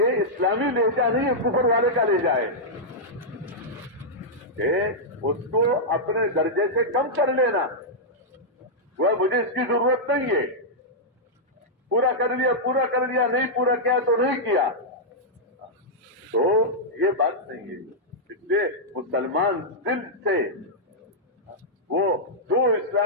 اسلامی لہجہ نہیں ہے، کفر والے کا لہجہ ہے. کہ اس کو اپنے درجے سے کم کر لینا، وہ مجھے اس کی ضرورت نہیں ہے، پورا کر لیا، پورا کر لیا، نہیں پورا کیا تو نہیں کیا. تو یہ بات نہیں ہے. اس لیے مسلمان دل سے وہ جو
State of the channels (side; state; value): both; normal; correlation -0.08